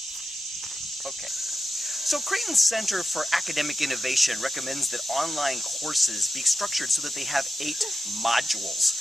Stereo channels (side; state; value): both; normal; correlation 0.90